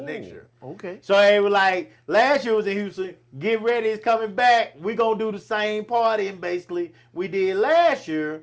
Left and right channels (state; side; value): identical; both; correlation 1.00